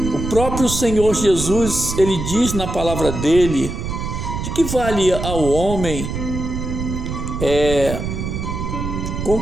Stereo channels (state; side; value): noise; right; rumble, 5 dB below the sound